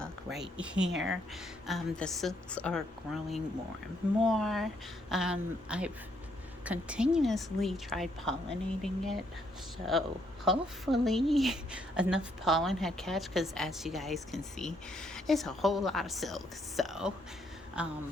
right here. The silks are growing more and more. I've continuously tried pollinating it, so hopefully enough pollen had catch. Because as you guys can see, it's a whole lot of silk. So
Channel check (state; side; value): normal; both; correlation 0.72